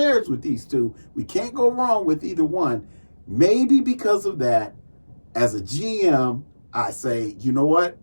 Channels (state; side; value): inverted; both; correlation -1.00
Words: with these two, we can't go wrong with either one. Maybe because of that, as a GM, I say, you know what?